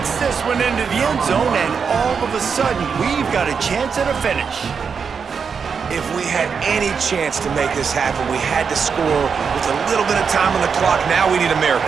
this one into the end zone, and all of a sudden, we've got a chance at a finish. If we had any chance to make this happen, we had to score with a little bit of time on the clock. Now we need a miracle.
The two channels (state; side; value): quieter; left; 6.1 dB